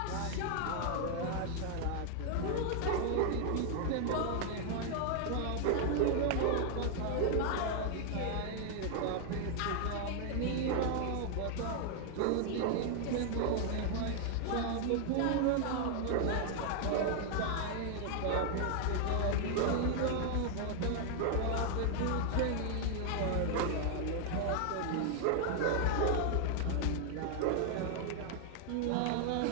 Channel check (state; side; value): different; both; correlation 0.00